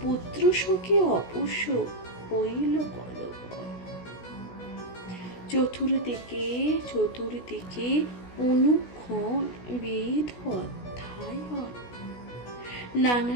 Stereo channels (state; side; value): late; right; 16 ms